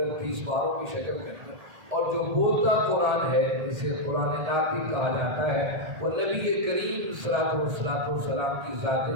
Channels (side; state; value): left; late; 1.7 ms